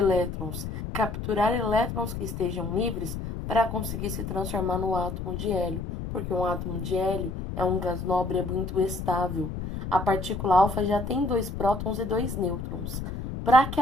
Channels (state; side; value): noise; left; rumble, 6 dB below the sound